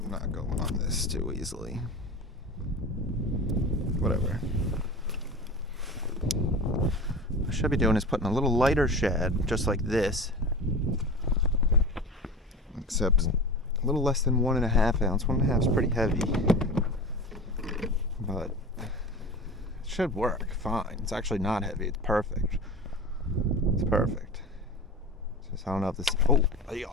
not going on this too easily. Whatever. What I should be doing is putting a little lighter shad, just like this. Except a little less than 1.5 ounce. 1.5 is pretty heavy. But it should work fine. It's actually not heavy, it's perfect. It's perfect. Just I don't know if this, oh, they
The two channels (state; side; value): normal; both; correlation 0.32